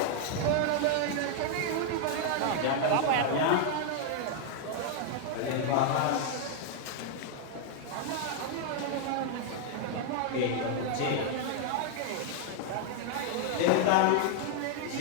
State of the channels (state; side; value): different; both; correlation 0.00